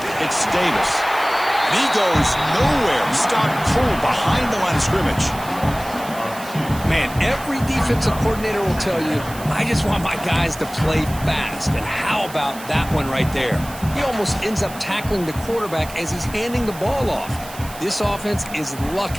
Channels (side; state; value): right; noise; hiss, 16 dB below the sound